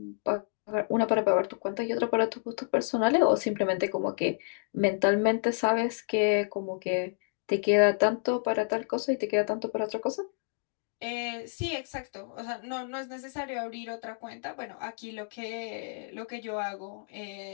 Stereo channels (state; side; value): silent; right; 58 dB below the other